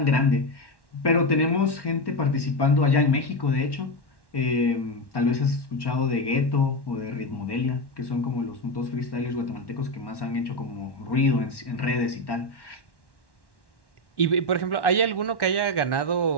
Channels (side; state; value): right; late; 1.1 ms